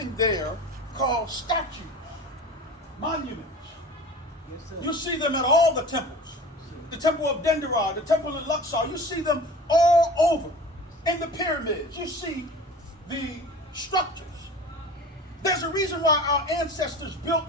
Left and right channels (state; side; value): normal; both; correlation 0.38